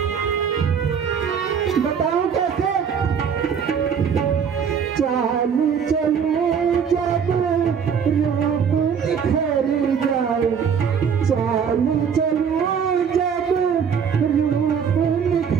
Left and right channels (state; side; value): quieter; left; 7.1 dB